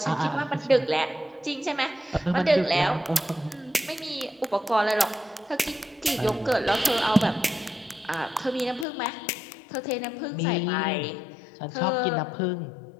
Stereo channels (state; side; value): drops out; right; at 8.8 s